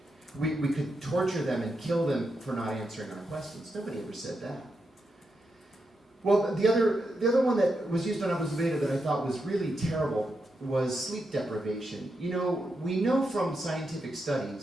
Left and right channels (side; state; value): both; normal; correlation 0.85